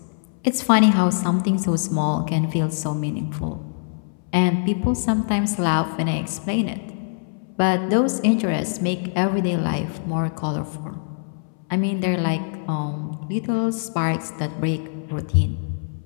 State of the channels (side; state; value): right; silent; 61 dB below the other